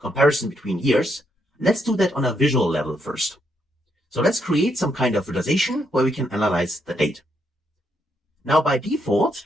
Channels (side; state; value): both; normal; correlation 0.77